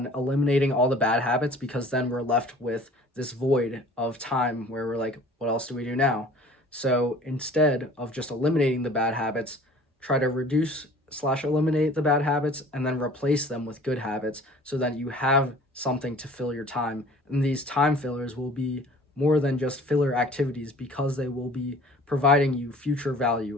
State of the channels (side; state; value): both; normal; correlation 0.48